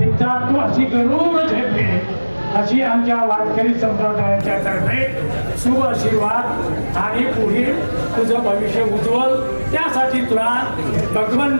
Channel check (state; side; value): inverted; both; correlation -1.00